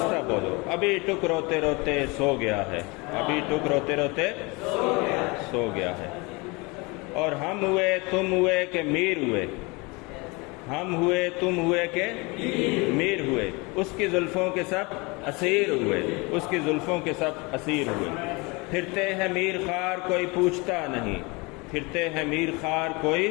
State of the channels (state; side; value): quieter; right; 26.8 dB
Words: بولو، ابھی ٹک روتے روتے سو گیا ہے، ابھی ٹک روتے روتے سو گیا ہے۔ اور ہم ہوئے تم ہوئے کہ میر ہوئے، ہم ہوئے تم ہوئے کہ میر ہوئے، اس کی زلفوں کے سب اسیر ہوئے، اس کی زلفوں کے سب اسیر ہوئے۔ پھرتے ہیں میر خار کوئی پوچھتا نہیں، پھرتے ہیں میر خار کوئی